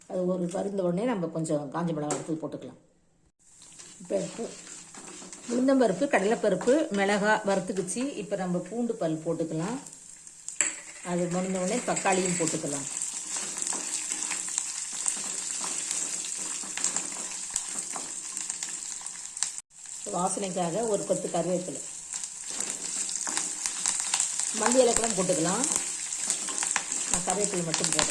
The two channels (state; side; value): identical; both; correlation 1.00